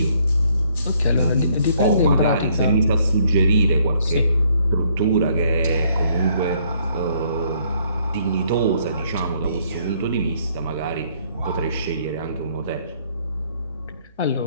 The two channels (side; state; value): both; inverted; correlation -0.67